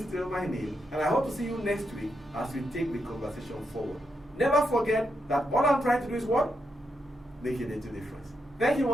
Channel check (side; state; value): both; normal; correlation 0.83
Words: still my name, and I hope to see you next week as we take the conversation forward. Never forget that all I'm trying to do is what? Make a little difference. Thank you